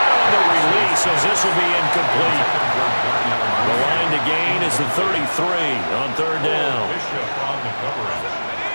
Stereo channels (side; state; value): both; inverted; correlation -1.00